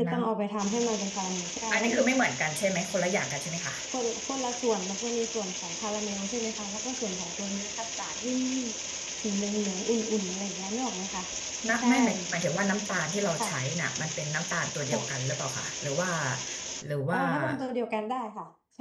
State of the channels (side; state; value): both; identical; correlation 1.00